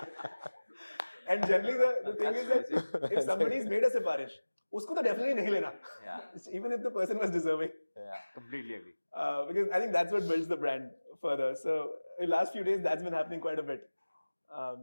And generally the thing is that if somebody's made a sifarish, उसको तो definitely नहीं लेना. Yeah. Even if the person was deserving. Yeah. Completely agree. Because I think that's what builds the brand further. So in the last few days, that's been happening quite a bit.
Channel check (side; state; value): both; inverted; correlation -1.00